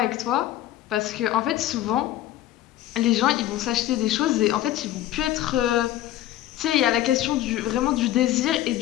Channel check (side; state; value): right; quieter; 13.6 dB